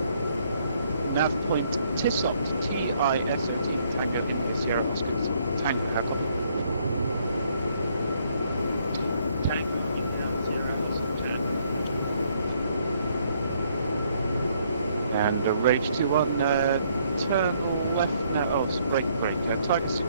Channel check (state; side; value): inverted; both; correlation -0.69